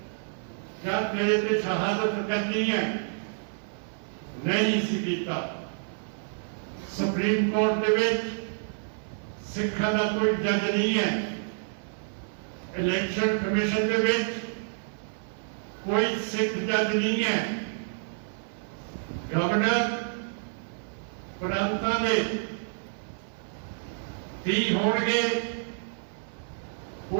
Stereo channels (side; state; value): left; silent; 59 dB below the other